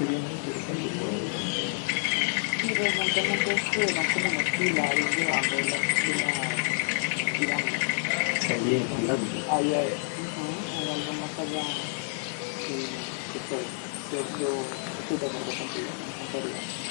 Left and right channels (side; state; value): right; silent; 59 dB below the other